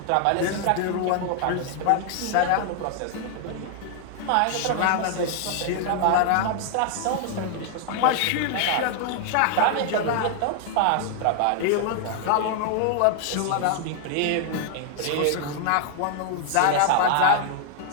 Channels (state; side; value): different; both; correlation 0.00